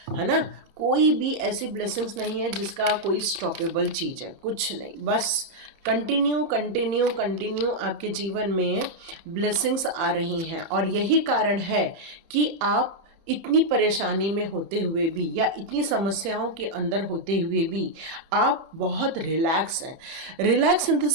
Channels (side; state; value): left; late; 30 ms